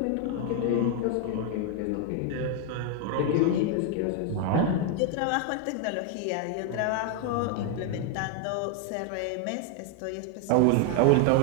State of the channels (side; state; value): both; different; correlation 0.00